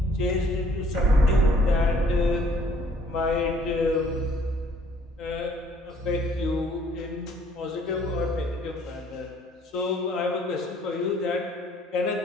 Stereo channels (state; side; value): normal; both; correlation 0.60